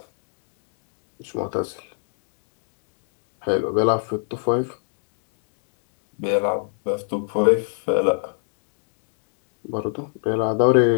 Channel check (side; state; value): right; silent; digital silence